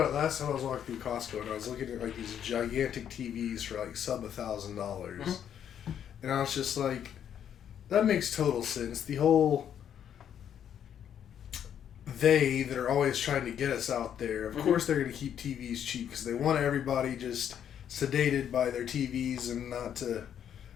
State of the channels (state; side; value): quieter; right; 9.2 dB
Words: it last time I was walking through Costco, and I was looking at like these gigantic TVs for like sub $1,000, and I was just like, that makes total sense. The whole that are always trying to get us out there. Of course, they're going to keep TVs cheap because they want everybody just sedated by their TVs and not to